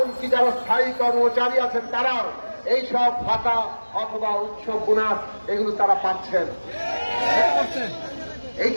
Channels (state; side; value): inverted; both; correlation -1.00